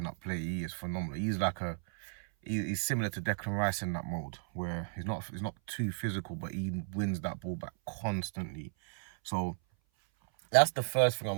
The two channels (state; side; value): silent; left; 55 dB below the other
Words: up play, he is phenomenal. He's similar to Declan Rice in that mode, where he's not too physical, but he wins that ball back constantly. So that's the first thing I